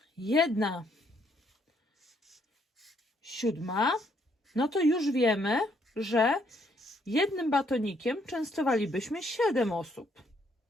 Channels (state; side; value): normal; both; correlation 0.70